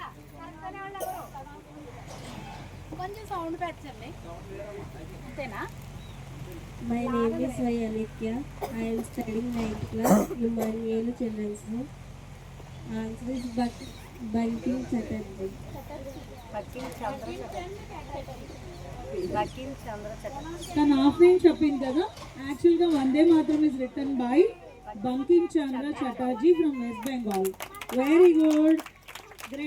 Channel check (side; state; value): both; identical; correlation 1.00